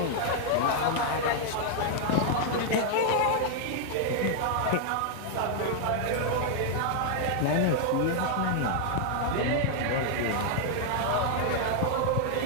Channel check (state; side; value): different; both; correlation 0.00